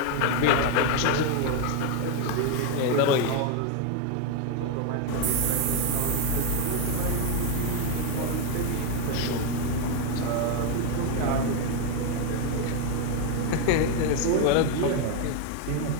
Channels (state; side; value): different; both; correlation 0.01